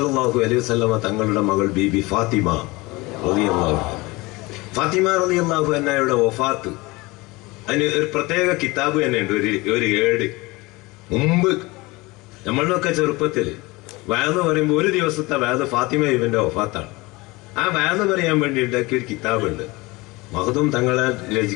അലൈഹി വസല്ലം തങ്ങളുടെ മകൾ ബീബി ഫാത്തിമ റളിയല്ലാഹു അൻഹയുടെ വഫാത്ത്, അതിന് ഒരു പ്രത്യേക കിതാബ് തന്നെ ഉണ്ട്, ഒരു ഏട്. മുമ്പ് നമ്മളിലൊക്കെ ചെറുപ്പത്തില് വയന്ന് പറയുമ്പോൾ ഒരു ദിവസത്തെ വയന്ന് ഫാത്തിമ ബീബിന്റെ വഫാത്താണ്. ആ വയന്ന് പറയാൻ വേണ്ടി ഉണ്ടാക്കിയ ഒരു കിതാബുണ്ട്. മഖ്ദൂം തങ്ങളാൽ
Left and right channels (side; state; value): right; quieter; 22.8 dB